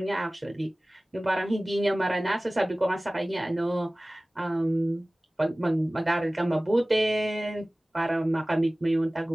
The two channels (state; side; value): normal; both; correlation 0.98